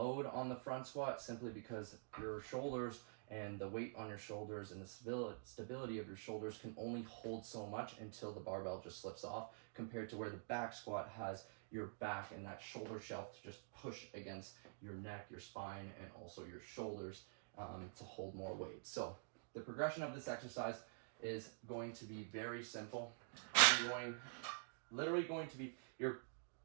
on the front squat, simply because your shoulders and the weight on your shoulders and the stability of your shoulders can only hold so much until the barbell just slips off, compared to where the back squat has your back and that shoulder shelf to just push against your neck, your spine, and also your shoulders to hold more weight. So the progression of this exercise is going to be very simple. Literally going to be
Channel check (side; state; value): left; silent; digital silence